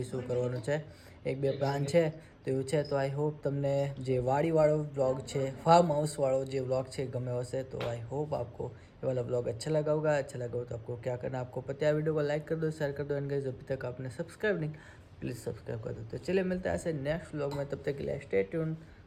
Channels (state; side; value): identical; both; correlation 1.00